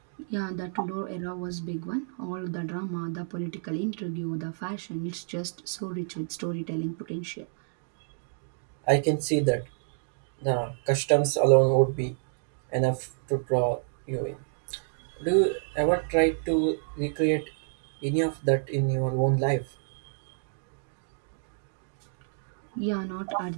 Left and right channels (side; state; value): left; silent; digital silence